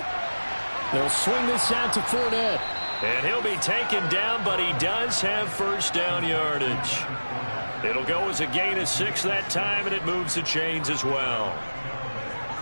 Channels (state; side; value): inverted; both; correlation -1.00